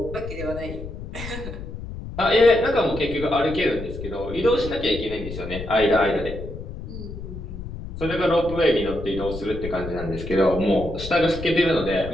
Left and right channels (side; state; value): left; noise; rumble, 9 dB below the sound